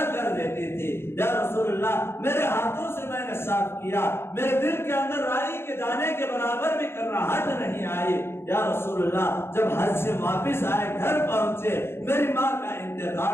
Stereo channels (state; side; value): late; right; 0.12 ms